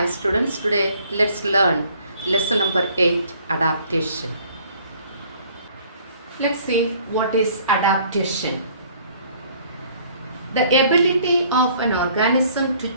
students, today let's learn lesson number 8, adaptation. Let's see what is adaptation. The ability of an organism to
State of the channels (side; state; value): both; inverted; correlation -0.58